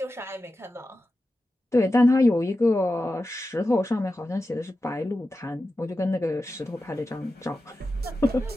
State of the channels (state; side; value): normal; both; correlation 0.92